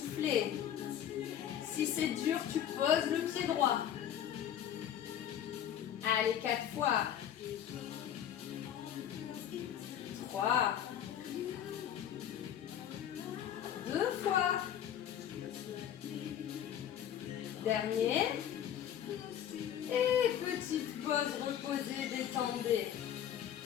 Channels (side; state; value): right; quieter; 10.0 dB